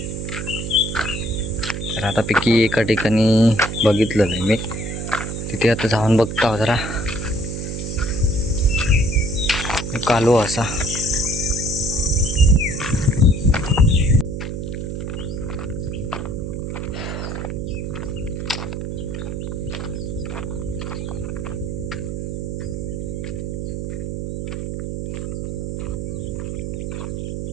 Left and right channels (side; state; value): right; noise; hum, 4 dB below the sound